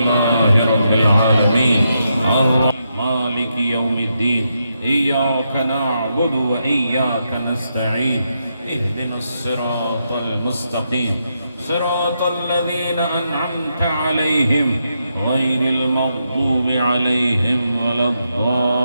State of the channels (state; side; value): inverted; both; correlation -0.83